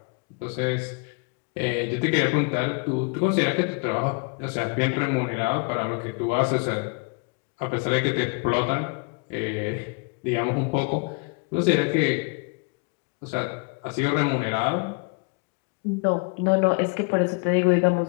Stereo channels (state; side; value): quieter; right; 33.0 dB